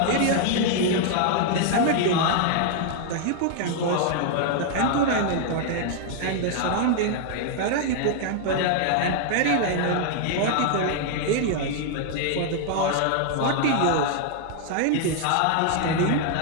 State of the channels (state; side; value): different; both; correlation 0.00